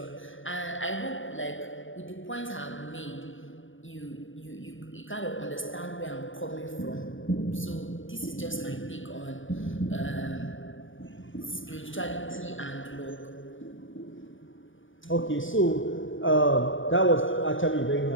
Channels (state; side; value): late; right; 0.57 ms